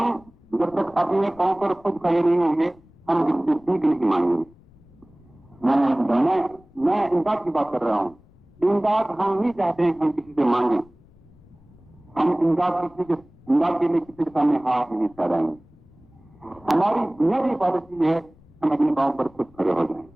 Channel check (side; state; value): left; noise; rumble, 27 dB below the sound